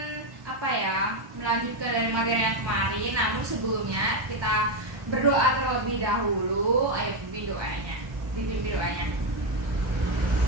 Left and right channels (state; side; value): late; left; 1.2 ms